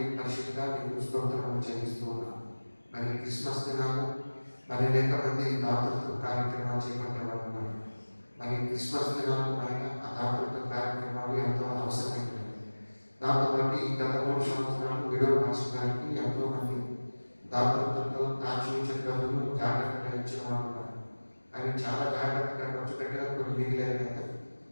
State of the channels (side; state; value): both; inverted; correlation -1.00